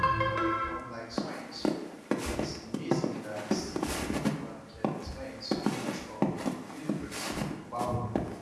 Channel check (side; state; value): both; identical; correlation 1.00